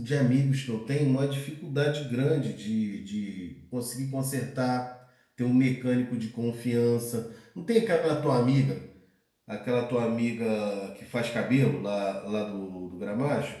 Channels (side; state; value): both; identical; correlation 1.00